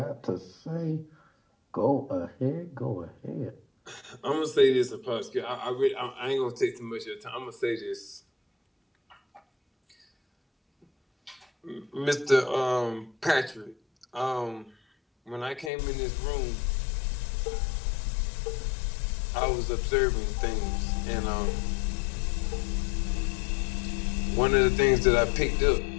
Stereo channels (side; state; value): right; drops out; at 15.7 s